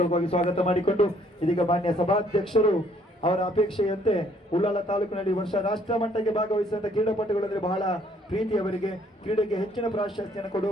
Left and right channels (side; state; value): both; normal; correlation 0.64